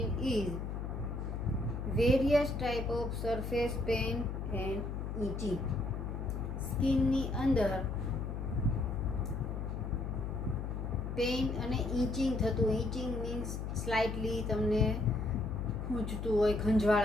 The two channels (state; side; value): noise; left; hum, 4 dB below the sound